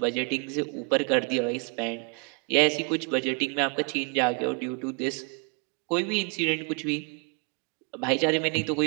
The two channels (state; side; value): quieter; left; 35.1 dB